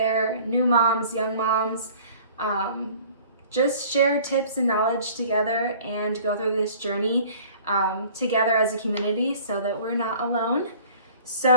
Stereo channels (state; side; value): inverted; both; correlation -0.50